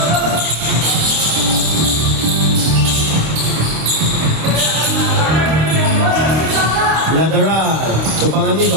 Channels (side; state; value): left; late; 26 ms